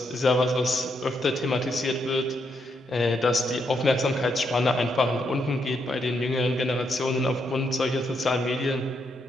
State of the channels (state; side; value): normal; both; correlation 0.78